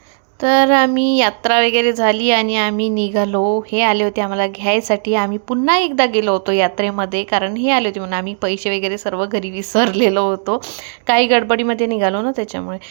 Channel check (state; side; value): silent; left; digital silence